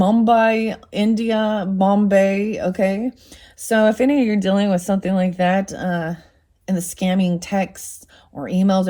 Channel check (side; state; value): both; identical; correlation 1.00